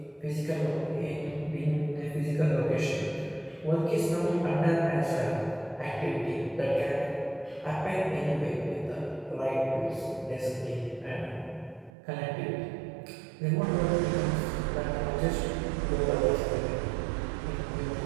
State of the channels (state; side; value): drops out; left; at 11.9 s